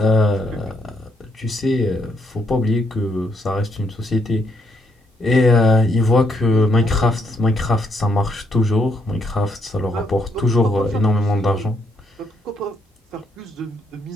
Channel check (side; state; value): both; normal; correlation 0.74